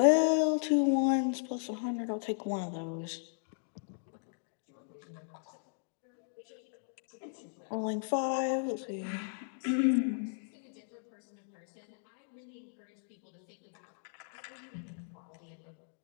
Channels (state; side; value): silent; right; digital silence